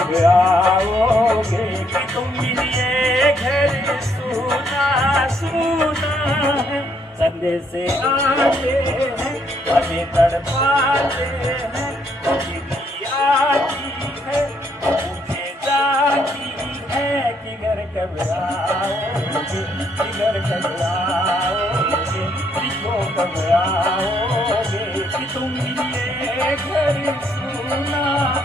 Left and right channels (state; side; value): normal; both; correlation 0.71